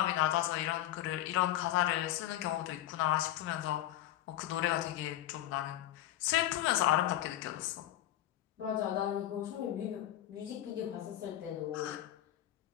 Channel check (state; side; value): quieter; right; 13.3 dB